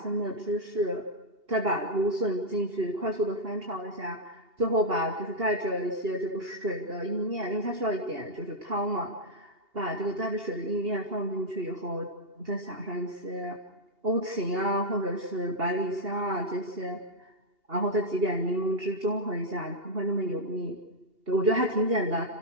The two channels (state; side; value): late; left; 2.8 ms